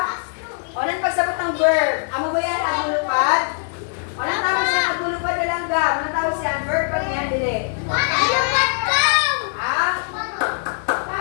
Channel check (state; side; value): silent; right; 60 dB below the other